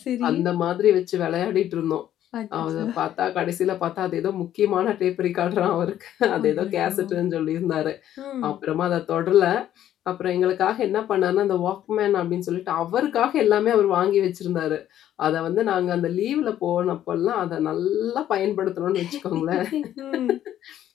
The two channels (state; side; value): quieter; right; 11.6 dB